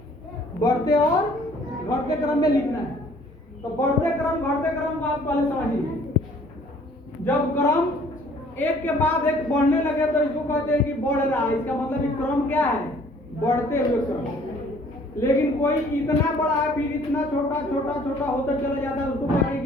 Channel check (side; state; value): both; normal; correlation 0.57